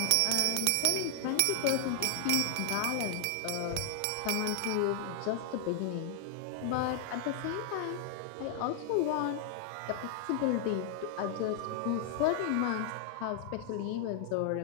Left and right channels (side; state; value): both; different; correlation 0.00